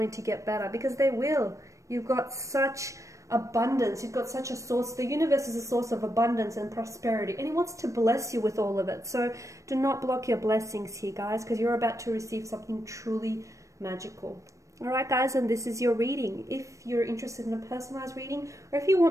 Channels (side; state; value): left; late; 0.15 ms